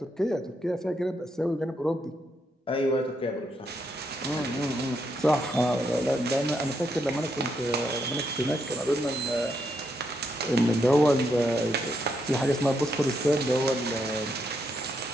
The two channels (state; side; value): normal; both; correlation 0.78